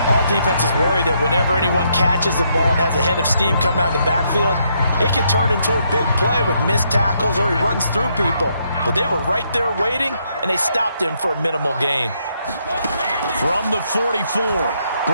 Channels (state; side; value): inverted; both; correlation -0.75